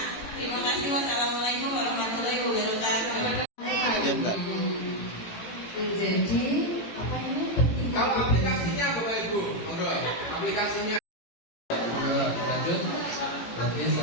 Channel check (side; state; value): right; late; 18 ms